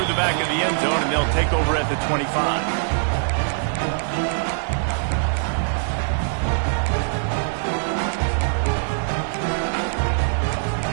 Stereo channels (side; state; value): left; silent; digital silence